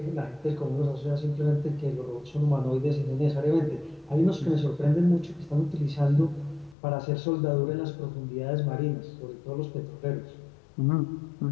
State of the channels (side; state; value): right; drops out; at 6.8 s